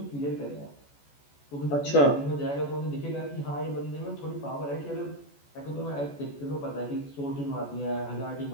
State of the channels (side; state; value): right; late; 14 ms